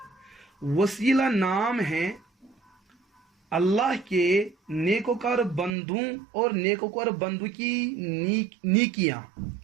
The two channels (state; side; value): drops out; left; at 5.7 s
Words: وسیلہ نام ہے اللہ کے نیکوکار بندوں اور نیکوکار بندوں کی نیکیاں